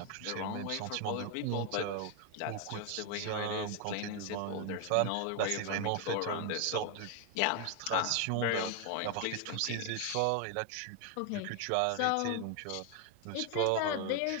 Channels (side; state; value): both; different; correlation 0.01